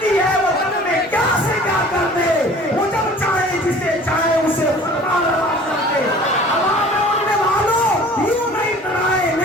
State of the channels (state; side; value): normal; both; correlation 0.47